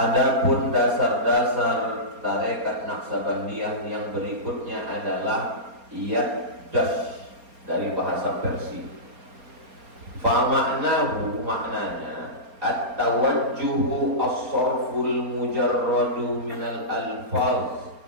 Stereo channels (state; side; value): late; left; 4.3 ms